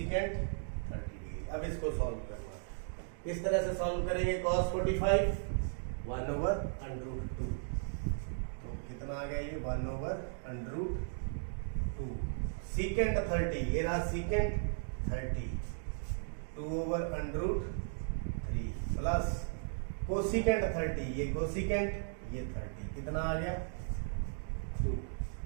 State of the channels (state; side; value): silent; left; digital silence